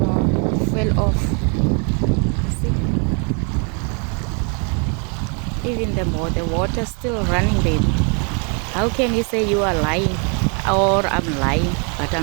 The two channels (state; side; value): quieter; left; 37.1 dB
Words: It fell off. See? Even the water still running, baby. How can you say you are lying? Or I'm lying, but